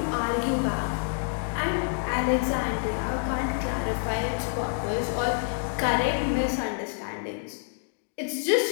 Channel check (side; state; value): right; silent; digital silence